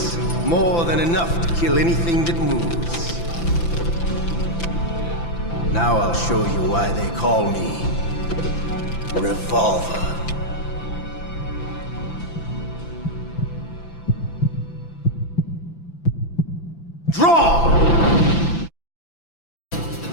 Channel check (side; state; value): right; late; 5.9 ms